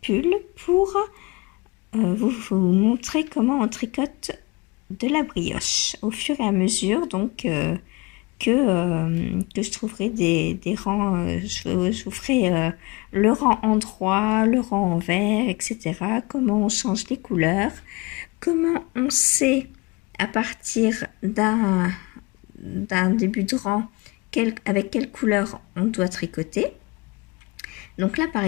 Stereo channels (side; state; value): right; quieter; 25.2 dB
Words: pull pour vous montrer comment on tricote de la brioche au fur et à mesure donc que je trouverai des rangs, je vous ferai le rang en droit, le rang en vert, etc. Comment on change les couleurs, comment on sait à partir d'un début de rang avec quelle couleur on doit tricoter. Donc là par